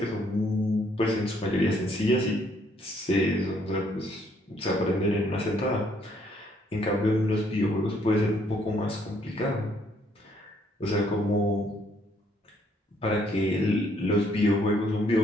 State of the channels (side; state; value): both; normal; correlation 0.68